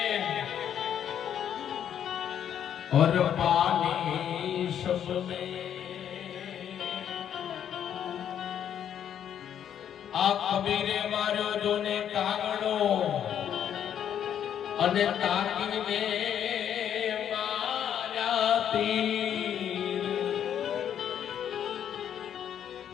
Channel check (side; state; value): right; quieter; 9.4 dB